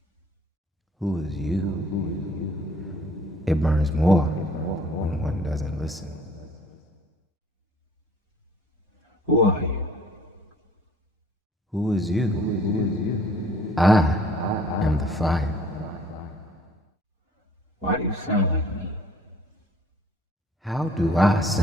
Who is you? It burns more when one doesn't listen. Who are you? Who is you? I am the fire. Why do you sound like me? How do I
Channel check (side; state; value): both; normal; correlation 0.55